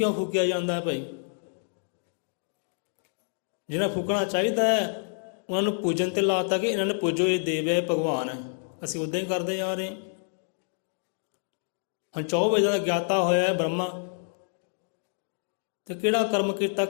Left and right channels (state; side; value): silent; right; digital silence